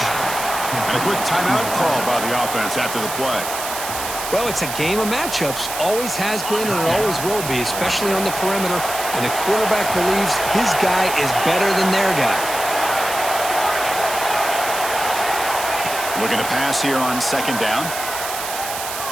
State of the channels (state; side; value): noise; right; hiss, 7 dB below the sound